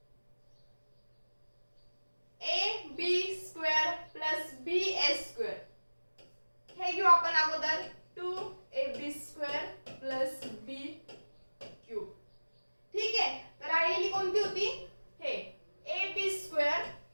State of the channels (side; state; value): both; inverted; correlation -1.00